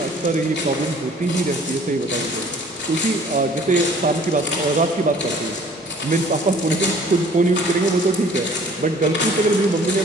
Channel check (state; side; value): normal; both; correlation 0.53